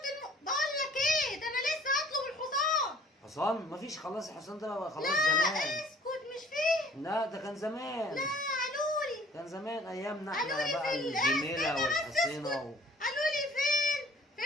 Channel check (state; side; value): normal; both; correlation 0.54